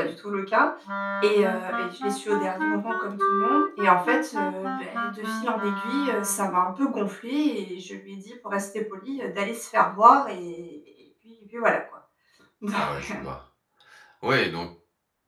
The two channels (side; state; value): both; identical; correlation 1.00